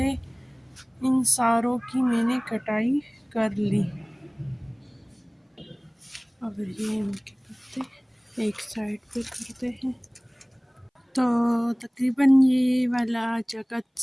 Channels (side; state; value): both; identical; correlation 1.00